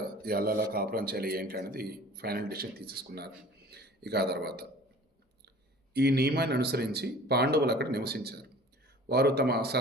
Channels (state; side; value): normal; both; correlation 0.46